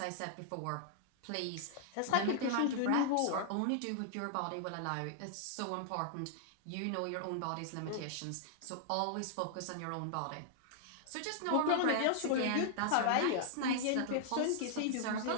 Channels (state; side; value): different; both; correlation -0.01